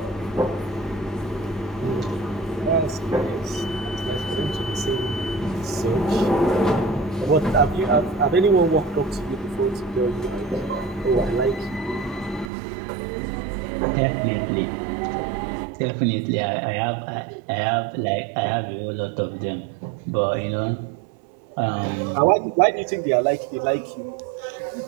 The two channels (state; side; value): drops out; left; at 12.5 s